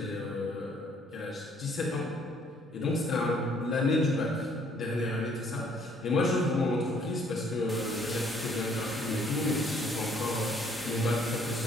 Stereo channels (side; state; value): both; normal; correlation 0.64